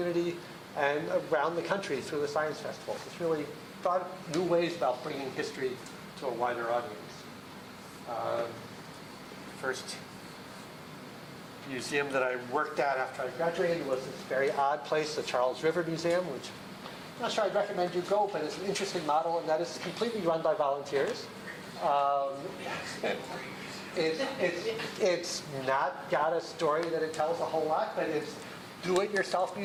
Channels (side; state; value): both; identical; correlation 1.00